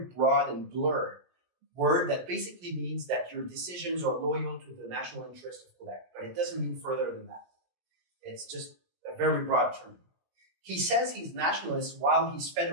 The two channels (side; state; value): left; late; 17 ms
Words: broad and blurred word that basically means that your decisions are loyal to the national interest of Quebec. But it doesn't mean further than that. It's just a very broad term. He says he's nationalist while he's